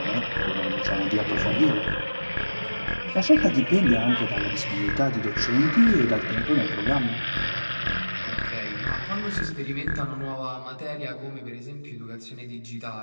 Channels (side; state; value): both; inverted; correlation -1.00